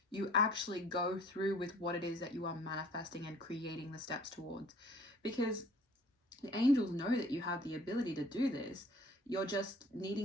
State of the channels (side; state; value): both; normal; correlation 0.53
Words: you actually go through with what it is that you are manifesting and creating the steps towards. Because the angels know that you have the ability to do this. You're just